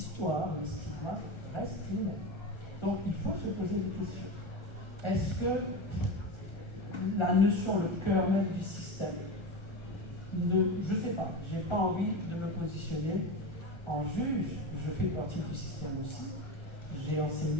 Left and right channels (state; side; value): late; right; 1.3 ms